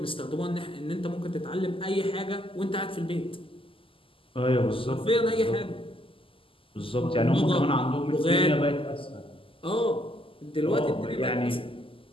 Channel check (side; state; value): right; late; 0.26 ms